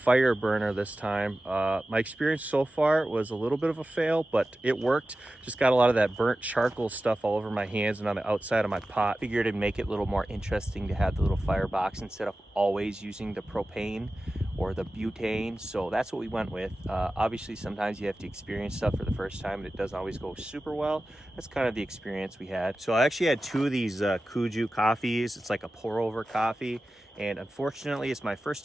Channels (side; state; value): both; normal; correlation 0.95